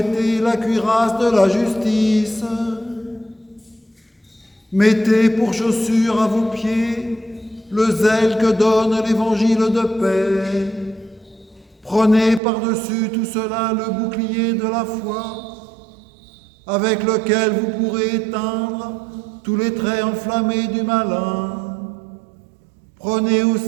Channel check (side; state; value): left; drops out; at 12.4 s